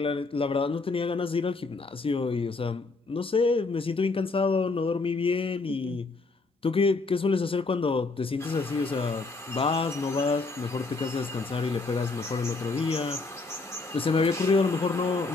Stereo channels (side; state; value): right; quieter; 3.7 dB